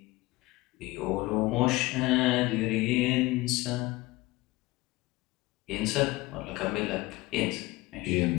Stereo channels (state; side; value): quieter; right; 20.4 dB